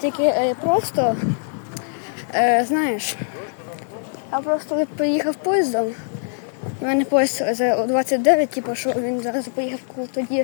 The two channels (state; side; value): silent; right; 64 dB below the other